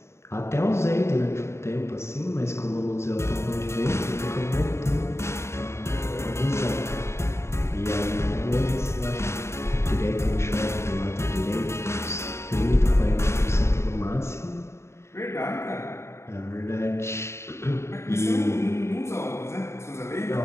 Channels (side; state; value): right; late; 0.13 ms